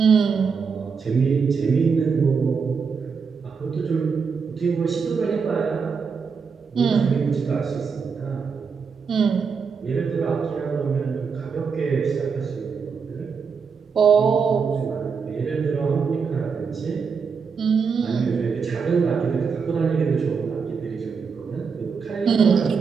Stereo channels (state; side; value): quieter; left; 5.7 dB